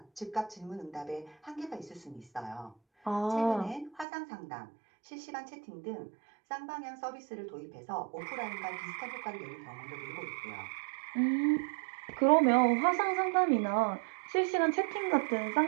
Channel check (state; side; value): drops out; left; at 4.0 s